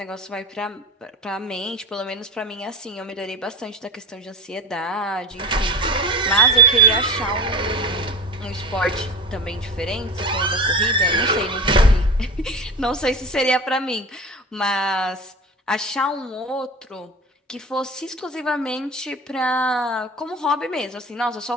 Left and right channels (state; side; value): normal; both; correlation 0.31